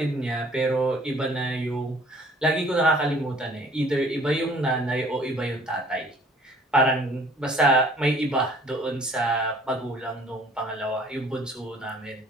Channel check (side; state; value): both; normal; correlation 0.55